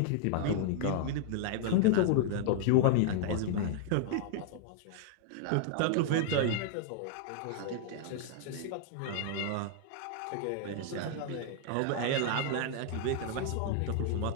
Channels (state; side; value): different; both; correlation -0.01